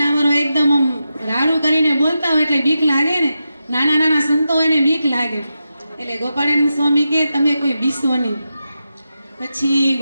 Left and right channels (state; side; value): inverted; both; correlation -0.89